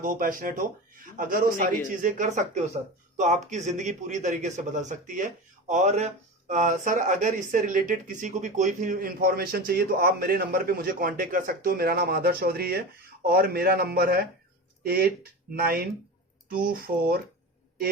हो, पैशनेट हो? अगर वो सारी चीजें कर सकते हो सर तो आपकी जिंदगी पूरी तरीके से बदल सकती है। और सर अगर इससे रिलेटेड किसी को भी कोई भी इंफॉर्मेशन चाहिए तो आप मेरे नंबर पे मुझे कांटेक्ट कर सकते हो। मेरा नाम आदर्श चौधरी है और मेरा नंबर है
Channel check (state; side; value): normal; both; correlation 0.27